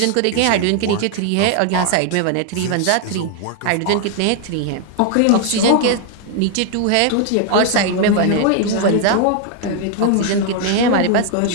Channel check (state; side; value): different; both; correlation 0.00